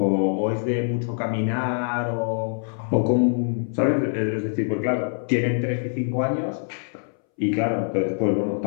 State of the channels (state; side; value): silent; right; 62 dB below the other